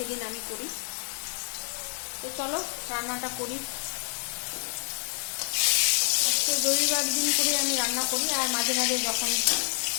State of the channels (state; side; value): silent; right; digital silence